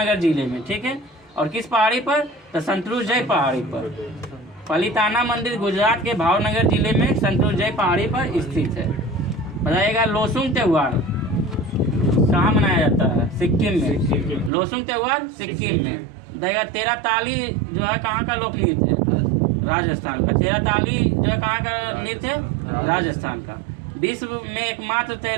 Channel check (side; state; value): left; drops out; at 14.5 s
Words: जिले में। ठीक है, और किस पहाड़ी पर? तो संतरुजय पहाड़ी पर। पालीताना मंदिर गुजरात के भावनगर जिले में संतरुजय पहाड़ी पर स्थित है। बताइएगा लोसुंग त्योहार कहाँ मनाया जाता है? सिक्किम में। लोसुंग त्योहार सिक्किम में। बताइएगा तेरह ताली जो है कहाँ का लोक नृत्य है? राजस्थान का। तेरह ताली जो है कहाँ का नृत्य है? राजस्थान का। विश्व में एकमात्र